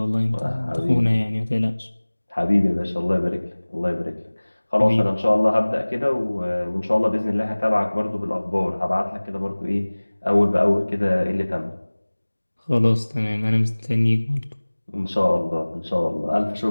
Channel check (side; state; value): both; inverted; correlation -1.00